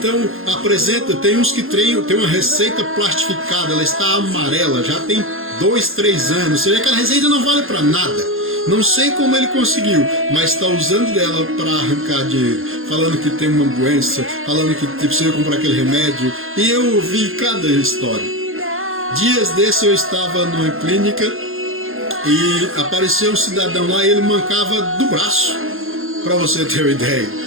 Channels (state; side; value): late; left; 0.60 ms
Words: tem uns que tem uma receita plastificada, ela está amarela, já tem 2, 3 anos, você vê que aquela receita não vale para nada. Não sei como ele conseguiu, mas está usando dela para arrancar dinheiro, falando que tem uma doença, falando que precisa comprar aquele remédio, e eu ouvi cada história. Dias desses eu estava numa clínica, e apareceu um cidadão lá e ele mancava do braço, para você ter uma